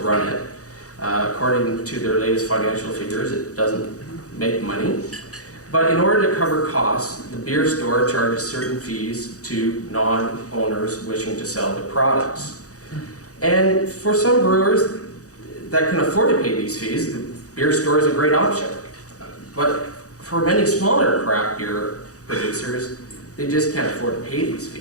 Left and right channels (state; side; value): late; right; 0.66 ms